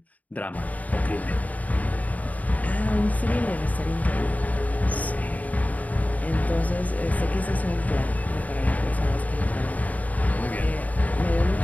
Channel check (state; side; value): late; right; 0.073 ms